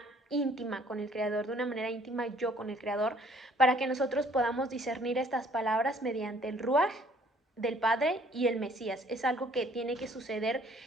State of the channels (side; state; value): both; normal; correlation 0.59